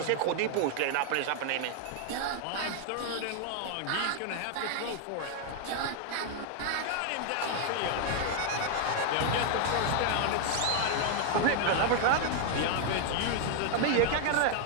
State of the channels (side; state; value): both; different; correlation 0.00